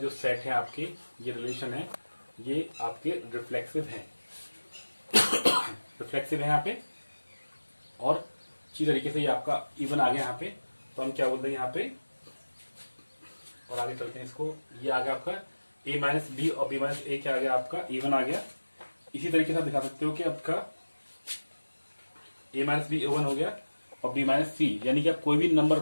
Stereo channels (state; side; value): inverted; both; correlation -1.00